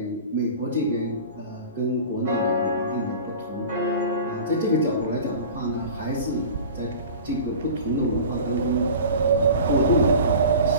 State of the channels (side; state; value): both; inverted; correlation -0.37